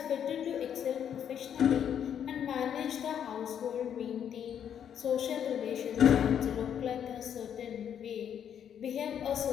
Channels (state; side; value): quieter; right; 8.9 dB